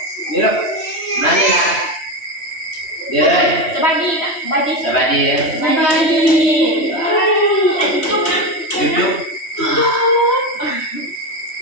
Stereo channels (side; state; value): right; late; 3.1 ms